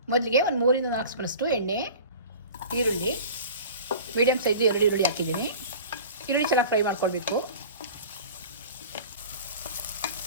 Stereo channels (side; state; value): both; inverted; correlation -0.40